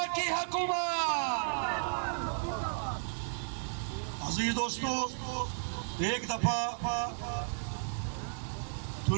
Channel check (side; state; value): left; silent; digital silence